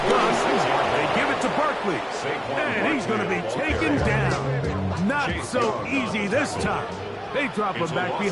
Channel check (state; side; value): identical; both; correlation 1.00